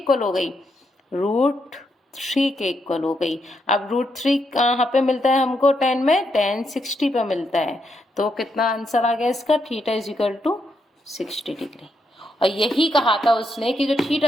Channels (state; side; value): normal; both; correlation 0.80